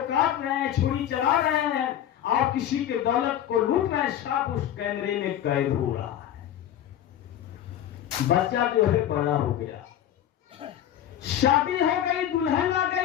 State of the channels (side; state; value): right; quieter; 11.0 dB